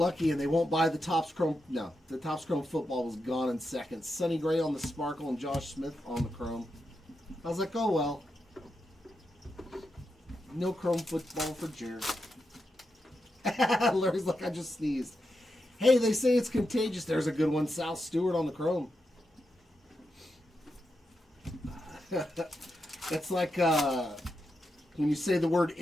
and they won't buy the Topps Chrome. No, the Topps Chrome football was gone in seconds. Sonny Gray on the sparkle and Josh Smith on the chrome. I was like, oh well. No chrome football for Jared. Larry's like, I just sneezed. Hey, they say it's contagious. There's a good one. Sal Stewart on the chrome. It's like when you say the word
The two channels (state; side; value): normal; both; correlation 0.86